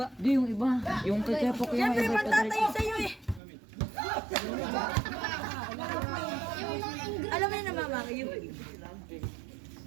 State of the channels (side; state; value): left; drops out; at 3.4 s